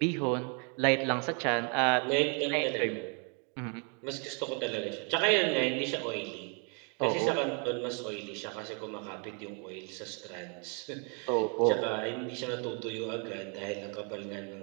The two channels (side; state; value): left; quieter; 37.7 dB